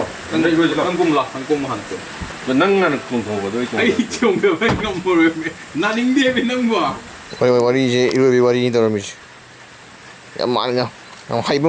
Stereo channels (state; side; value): identical; both; correlation 1.00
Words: 근데 이거 한국라 한국 한쪽. Menang kung ko do 아이 좀 배가 뭐래. 나닝 대비 는 거. Wari je ilu wari ni tahu mesti. Yang mana? Yang hai